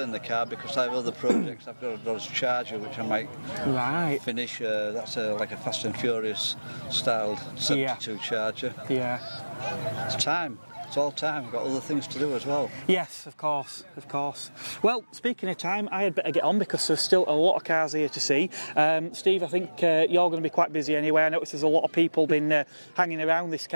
the car because I have other projects. I've got a Dodge Charger which I might finish. That's like a Fast and Furious styled 72 Charger. Yeah. It's time. It's all time. I've got other things to do as well. Yes, of course. Well, speaking of time, I had better get on because there's still a lot of cars here to see. Steve, I think you're going to be quite busy anyway. I noticed there's a lot of people been hanging around this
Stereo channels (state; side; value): inverted; both; correlation -1.00